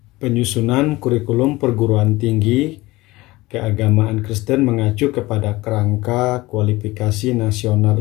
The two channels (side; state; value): right; quieter; 19.9 dB